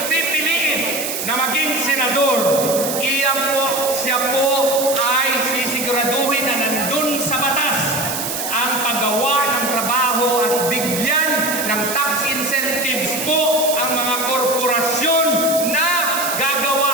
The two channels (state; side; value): noise; right; hiss, 4 dB below the sound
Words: pipiliin na maging senador, siya po ay sisiguraduhin na nandun sa batas ang paggawa ng trabaho at bigyan ng tax incentives po ang mga korporasyon na